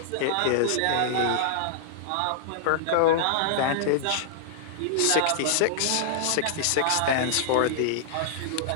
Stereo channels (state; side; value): different; both; correlation -0.01